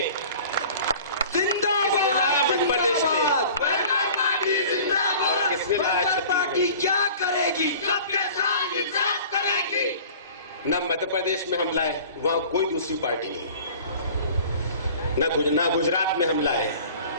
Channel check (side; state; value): both; inverted; correlation -0.44